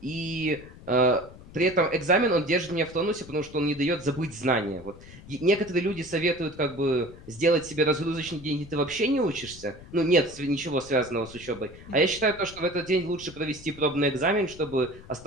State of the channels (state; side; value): noise; left; rumble, 18 dB below the sound